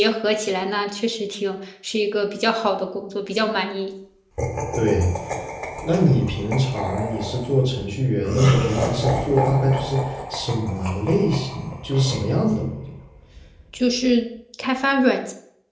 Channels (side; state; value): both; identical; correlation 1.00